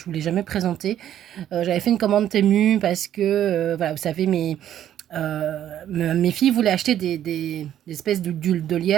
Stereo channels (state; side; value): quieter; left; 11.1 dB